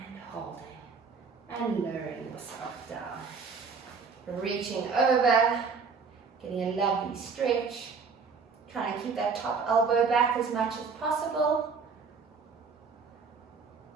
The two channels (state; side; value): quieter; left; 5.2 dB